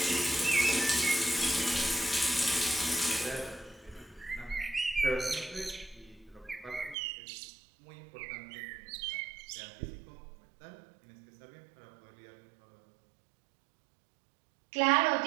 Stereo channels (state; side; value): drops out; left; at 7.0 s